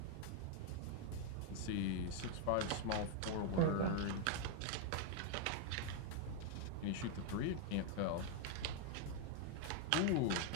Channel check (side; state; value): both; different; correlation 0.00